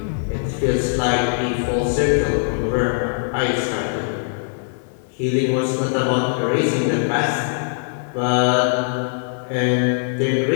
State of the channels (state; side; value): silent; right; digital silence